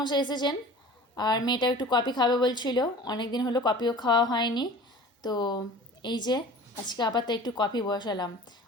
এসেছেন, আর মেয়েটাও একটু কফি খাবে বলছিল, অনেক দিন হলো কফিও খাওয়া হয়নি। তো এই যে আজকে আবার তো একটু কফি বসালাম।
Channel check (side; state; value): both; normal; correlation 0.42